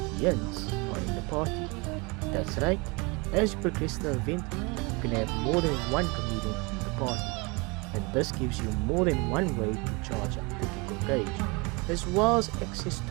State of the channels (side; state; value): left; quieter; 28.0 dB